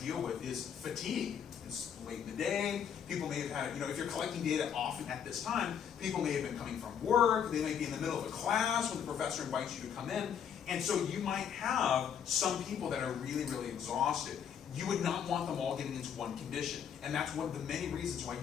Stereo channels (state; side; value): quieter; right; 8.2 dB